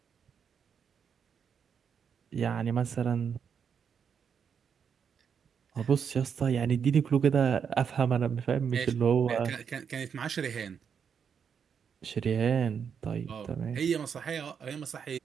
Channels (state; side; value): quieter; left; 7.1 dB